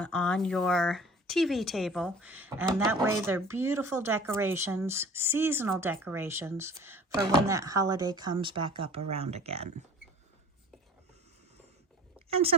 your TV table, and that way they're beautiful decorations, seasonal decorations for when that holiday comes back up around again. And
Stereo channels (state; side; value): normal; both; correlation 0.45